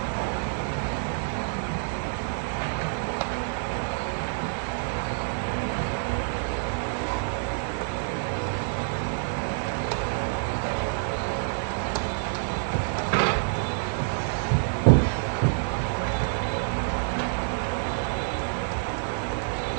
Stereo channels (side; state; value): left; silent; 60 dB below the other